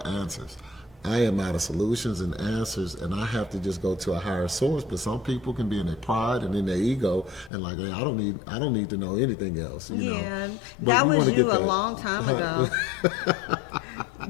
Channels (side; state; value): right; drops out; at 7.5 s